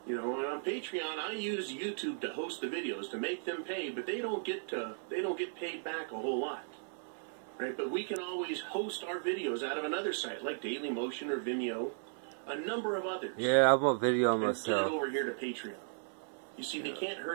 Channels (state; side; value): silent; left; 54 dB below the other